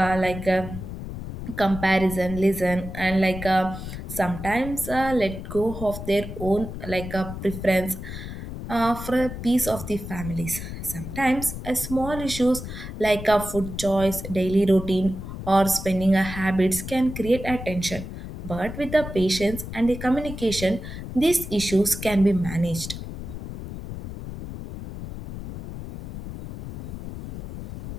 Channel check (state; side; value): noise; left; rumble, 9 dB below the sound